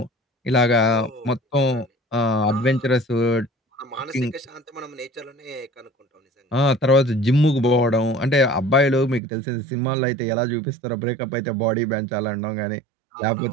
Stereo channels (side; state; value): left; drops out; at 9.2 s